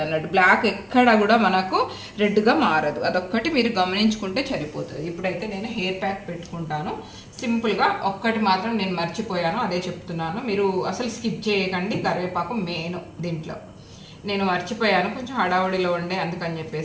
అన్నట్టు. బ్లాక్ ఎక్కడ కూడా మనకు రెడ్ గా మారదు, అదొక్కటి మీరు గమనించుకుంటే సరిపోతుంది. ఇప్పుడైతే నేను హెయిర్ ప్యాక్ పెట్టుకుంటాను సింపుల్ గా. ఒక్కటి మాత్రం నేను మర్చిపోయాను, అదే చెప్తున్నాను, మీరు అసలు స్కిప్ చేయకండి. కరివేపాకు మెయిన్ దీంట్లో, నేను మర్చిపోయాను, కొంచెం హడావుడిలో ఉండే, అందుకని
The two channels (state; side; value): identical; both; correlation 1.00